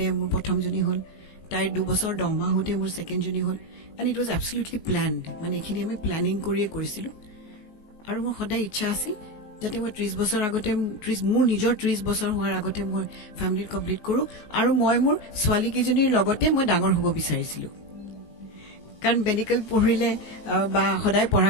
মোৰ প্ৰথমজনী হ'ল তাইৰ 2 বছৰ 10 মাহ হওঁতে মোৰ ছেকেণ্ডজনী হ'ল এণ্ড ইট ৱাজ এবছলিউটলি প্লেনড মানে এইখিনি আমি প্লেনিং কৰিয়ে কৰিছিলোঁ আৰু মোৰ সদায় ইচ্ছা আছিল যাতে মই 30 বছৰ আগতে মোৰ নিজৰ 30 বছৰ হোৱাৰ আগতে মই ফেমিলি কমপ্লিট কৰোঁ আৰু মই মোৰ ছোৱালীকেইজনীৰ লগতে মই ডাঙৰ হ'ব বিচাৰিছিলোঁ কাৰণ মেডিকেল পঢ়িলে বা সদায় পঢ়া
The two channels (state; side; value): late; right; 19 ms